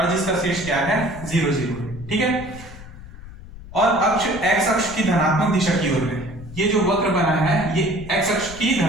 जिसका शीर्ष क्या है 0 0। ठीक है, और अक्ष x अक्ष की धनात्मक दिशा की ओर है। ये जो वक्र बना है ये x अक्ष की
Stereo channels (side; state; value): left; noise; rumble, 16 dB below the sound